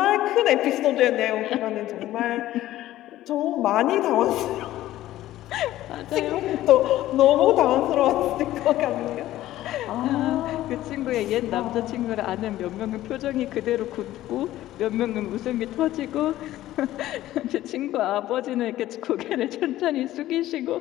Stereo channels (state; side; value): quieter; right; 14.6 dB